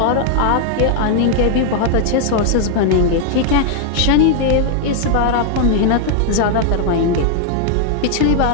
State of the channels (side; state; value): both; different; correlation 0.00